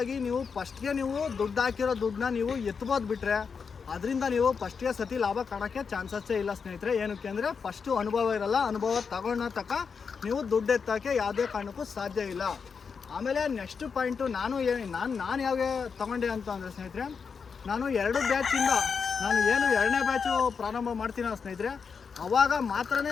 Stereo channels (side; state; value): right; quieter; 5.8 dB